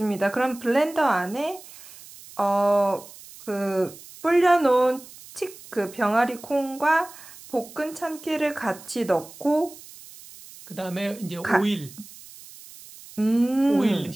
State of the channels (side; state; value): right; noise; hiss, 19 dB below the sound